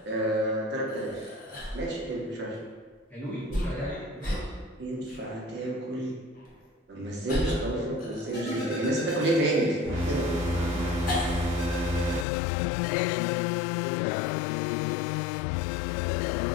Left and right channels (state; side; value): drops out; right; at 12.2 s